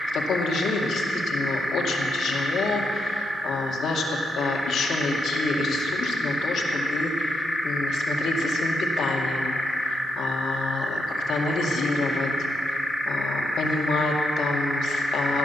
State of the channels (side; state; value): both; normal; correlation 0.82